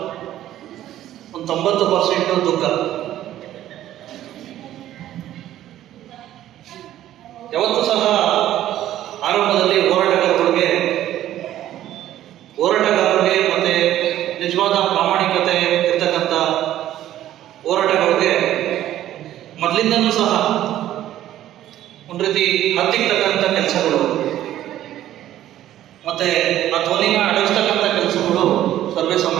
ಒಂದು 90% ದುಃಖ. ಯಾವತ್ತೂ ಸಹ ಆರಂಭದಲ್ಲಿ ಹೋರಾಟಗಾರರಿಗೆ ಮತ್ತೆ ನಿಜವಾದ ಪ್ರಾಮಾಣಿಕತೆ ಇರ್ತಕ್ಕಂಥ ಹೋರಾಟಗಾರರಿಗೆ ಮೊದಲಿಂದನೂ ಸಹ ಒಂದು ರೀತಿ ಹತ್ತಿರ್ತಕ್ಕಂಥ ಕೆಲಸಗಳು ಮತ್ತೆ ಆ ಧ್ವನಿನ ಅಡಗಿಸ್ತಕ್ಕಂಥ ಕೆಲಸಗಳು ಸರ್ವೇ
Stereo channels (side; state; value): left; quieter; 12.8 dB